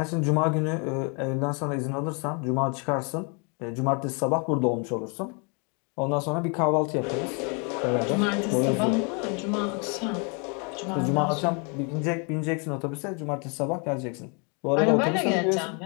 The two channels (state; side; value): quieter; right; 35.1 dB